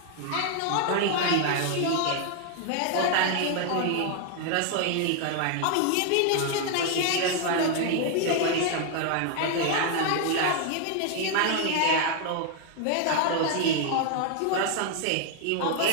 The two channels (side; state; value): both; different; correlation 0.00